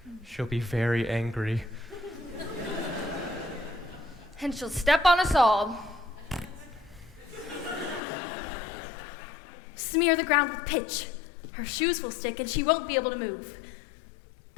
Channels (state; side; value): drops out; right; at 8.0 s